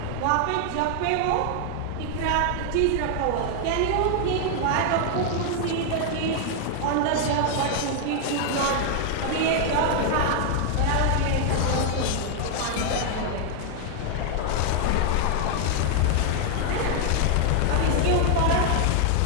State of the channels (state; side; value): different; both; correlation 0.00